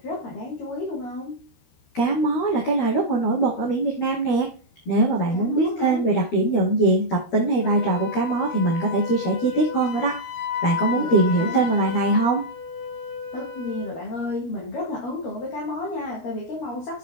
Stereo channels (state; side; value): late; right; 13 ms